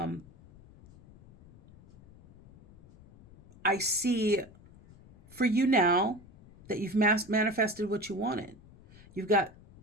I see for you now that you've manifested what you wanted. You've got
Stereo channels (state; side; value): noise; left; rumble, 23 dB below the sound